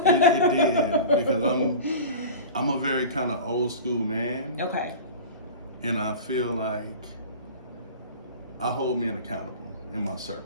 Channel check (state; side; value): inverted; both; correlation -0.35